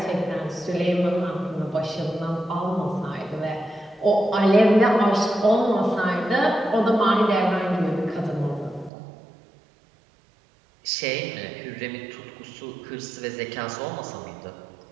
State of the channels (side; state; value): left; drops out; at 8.9 s